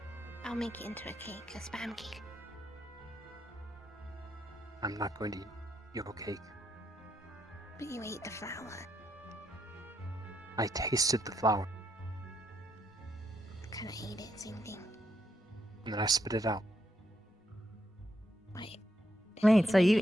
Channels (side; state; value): both; normal; correlation 0.79